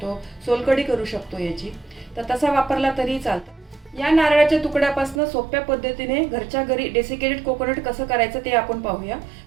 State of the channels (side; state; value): left; drops out; at 5.2 s